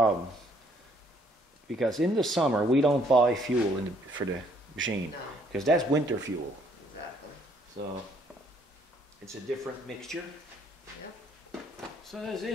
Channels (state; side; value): normal; both; correlation 0.65